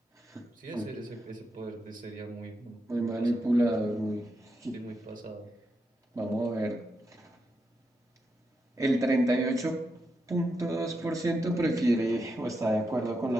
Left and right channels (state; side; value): normal; both; correlation 0.84